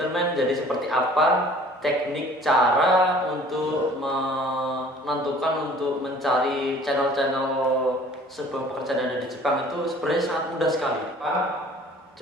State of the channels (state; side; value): normal; both; correlation 0.51